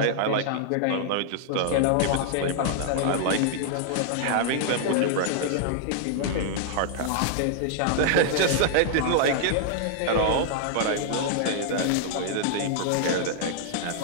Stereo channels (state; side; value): different; both; correlation -0.01